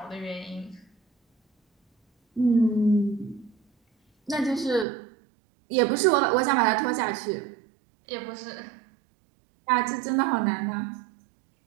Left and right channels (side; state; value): left; drops out; at 4.9 s